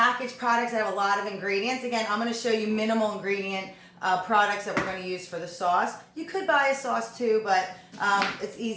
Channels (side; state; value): both; identical; correlation 1.00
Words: products that have a lot of ingredients. Again, I'm going to show you minimal ingredient products that we're going to use for the sauce. You could buy a sauce too, but it's